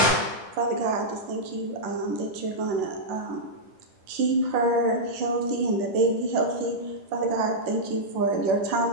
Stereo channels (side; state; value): left; late; 10 ms